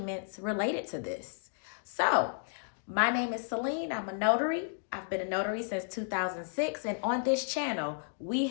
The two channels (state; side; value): silent; right; digital silence